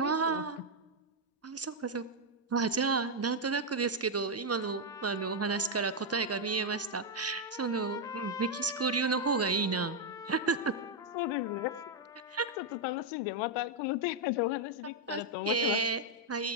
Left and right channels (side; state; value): both; normal; correlation 0.00